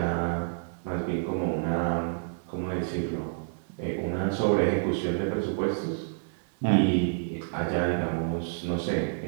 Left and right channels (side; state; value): left; silent; digital silence